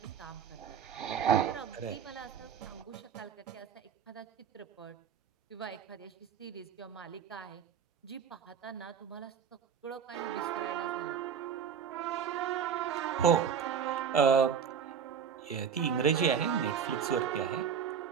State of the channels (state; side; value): quieter; left; 7.4 dB